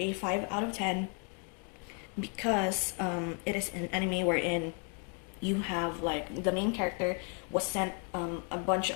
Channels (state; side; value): quieter; right; 37.1 dB